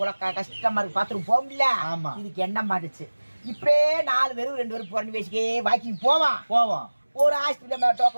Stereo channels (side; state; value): both; inverted; correlation -1.00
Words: கஷ்டமா இருக்கு, பாத்ரூம் போக முடியல. இதுக்கு என்ன மாட்டுச்சு, இப்படியே 4 பேரும் 2 பேரும் பொண்ணு வச்சுக்கே வாக்கிங் போவோம். ஒரு ஹாஸ்பிட்டல்